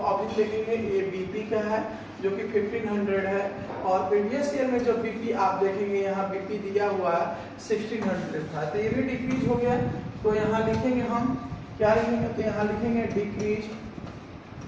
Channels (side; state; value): both; identical; correlation 1.00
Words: अभी देखेंगे ये बीपी का है जो कि 1500 है और प्रीवियस ईयर में जो बीपी आप देखेंगे यहाँ बीपी दिया हुआ है 1600 था, तो ये भी डिक्रीज हो गया। तो यहाँ लिखेंगे हम क्या लिखेंगे, तो यहाँ लिखेंगे